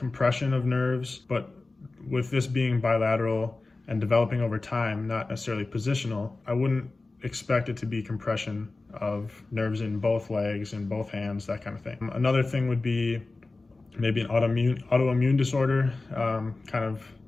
of nerves, but with this being bilateral and developing over time, not necessarily positional, I wouldn't expect it to be compression of nerves in both legs and both hands, that kind of thing. Another thing would be maybe an autoimmune disorder, kind of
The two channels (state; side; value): quieter; right; 3.4 dB